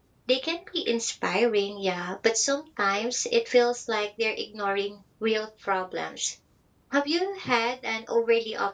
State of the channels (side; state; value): both; identical; correlation 1.00